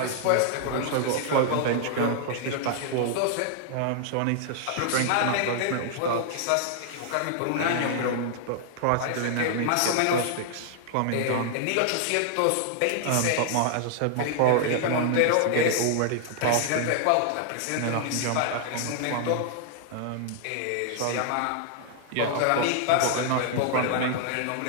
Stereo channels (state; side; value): different; both; correlation -0.01